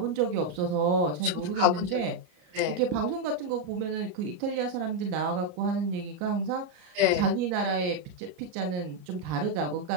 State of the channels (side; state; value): left; late; 33 ms